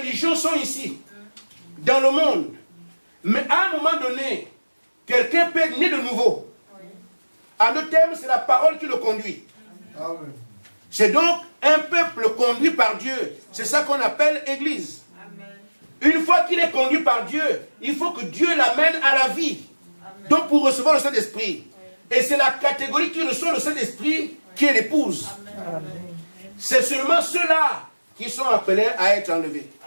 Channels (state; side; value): inverted; both; correlation -1.00